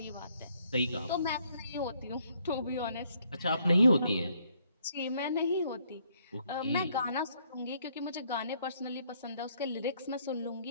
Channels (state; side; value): inverted; both; correlation -0.68